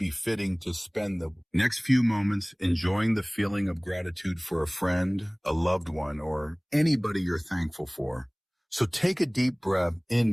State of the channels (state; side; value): identical; both; correlation 1.00